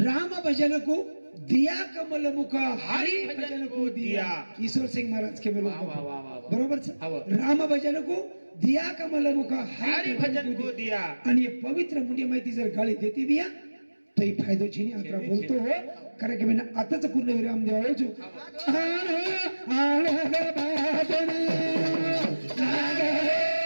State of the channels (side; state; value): both; inverted; correlation -1.00